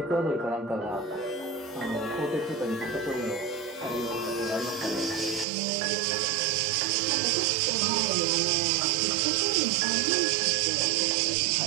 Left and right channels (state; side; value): drops out; left; at 5.5 s